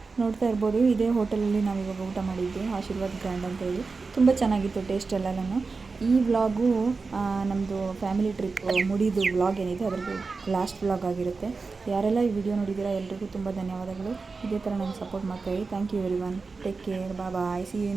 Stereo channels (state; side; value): quieter; left; 4.3 dB